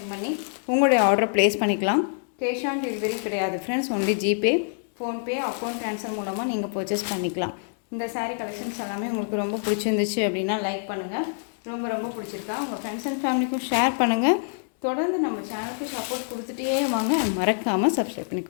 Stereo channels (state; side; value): silent; right; 61 dB below the other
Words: பண்ணி உங்களுடைய ஆர்டரை ப்ளேஸ் பண்ணிக்கலாம். கேஷ் ஆன் டெலிவரி கிடையாது friends, only GPay, PhonePe, account transfer மூலமாக நீங்கள் பர்ச்சேஸ் பண்ணிக்கலாம். இந்த சாரீ கலெக்ஷன்ஸ் எல்லாமே உங்களுக்கு ரொம்ப பிடிச்சிருந்துச்சு அப்படின்னா லைக் பண்ணுங்கள். ரொம்ப ரொம்ப பிடிச்சிருக்கா உங்கள் ஃப்ரெண்ட்ஸ் அண்ட் ஃபேமிலிக்கும் ஷேர் பண்ணுங்கள். தொடர்ந்து நம்ம சேனலுக்கு சப்போர்ட் கொடுத்துட்டே வாங்க. மறக்காமல் சப்ஸ்கிரைப்